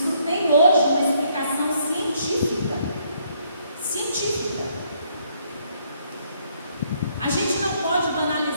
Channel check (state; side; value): inverted; both; correlation -0.69